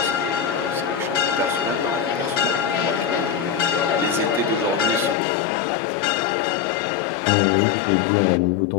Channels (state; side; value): drops out; right; at 5.2 s